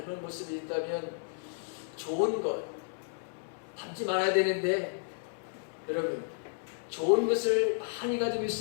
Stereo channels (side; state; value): right; silent; digital silence